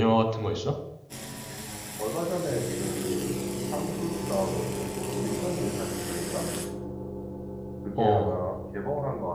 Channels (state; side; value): identical; both; correlation 1.00